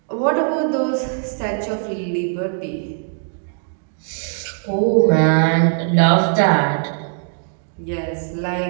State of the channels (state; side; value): silent; left; digital silence